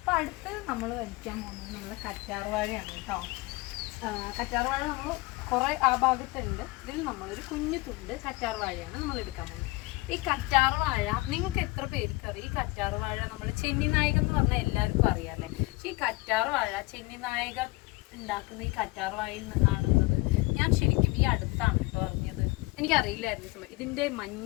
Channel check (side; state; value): right; quieter; 22.3 dB